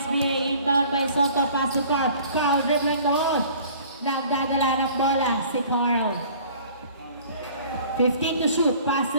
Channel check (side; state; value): both; inverted; correlation -0.50